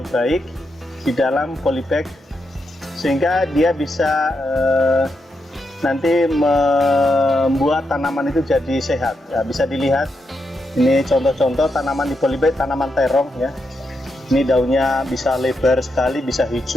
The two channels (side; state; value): both; normal; correlation 0.84